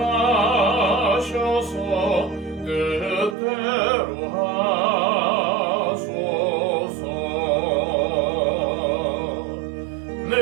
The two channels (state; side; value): drops out; left; at 3.4 s